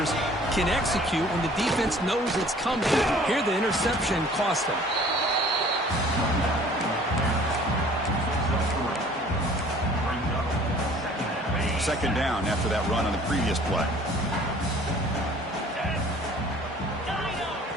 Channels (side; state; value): both; normal; correlation 0.52